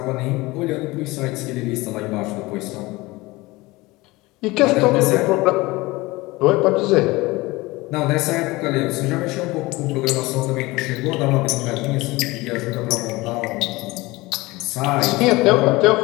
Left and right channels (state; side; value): quieter; right; 21.4 dB